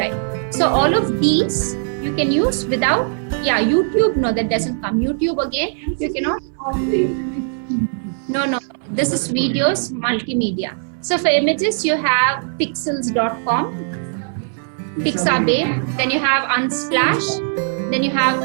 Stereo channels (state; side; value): silent; left; 63 dB below the other